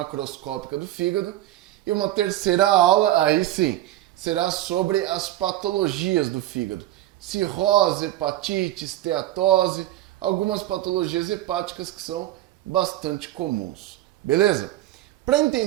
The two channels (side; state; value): left; quieter; 14.7 dB